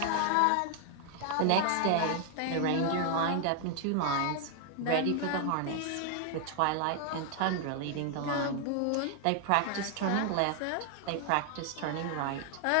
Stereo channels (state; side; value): different; both; correlation 0.00